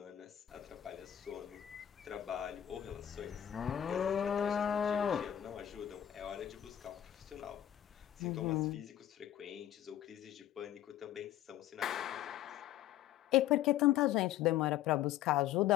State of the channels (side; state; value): right; quieter; 11.9 dB